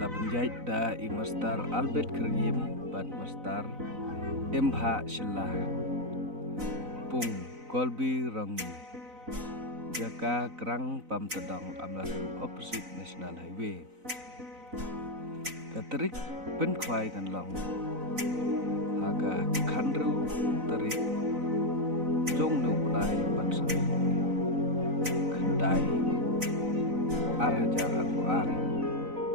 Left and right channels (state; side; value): late; left; 4.0 ms